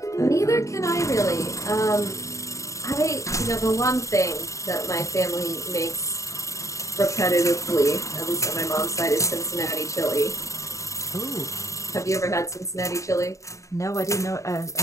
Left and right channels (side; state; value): right; late; 0.15 ms